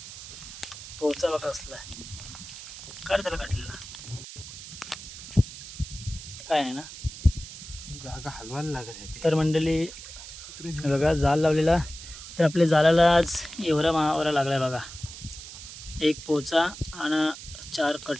पोचा बघा असला आहे. कर त्याला कटलेला काय आहे ना, जागा हलवायला लागत. तर मंडळी बघा, जाल लावलेला. तर आपल्या जालाला आज एवढा महावरा लागला बघा. एक पोचा आणि 4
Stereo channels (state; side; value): noise; right; hiss, 13 dB below the sound